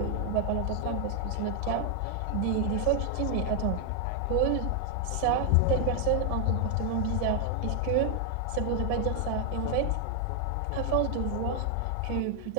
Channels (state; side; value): different; both; correlation 0.00